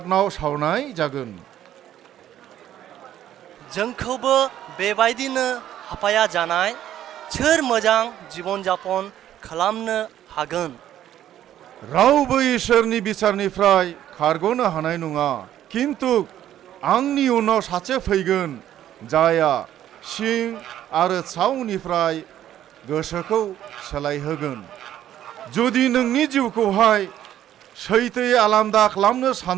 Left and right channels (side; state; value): left; quieter; 11.7 dB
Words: सावनाय जागोन। जोंखौबो बेबायदिनो हापाया जानाय सोर मोजां जीवन जापन खालामनो हागोन? रावबो इसोरनि बिचारनिफ्राय खारग'नो हानाय नङा। किन्तु आंनि उनाव सासे फैगोन, जायहा सिं आरो सावनिफ्राय गोसोखौ सोलायहोगोन। जुदि नोंनि जिउखौहाय सैथोयै आलादा खालामनो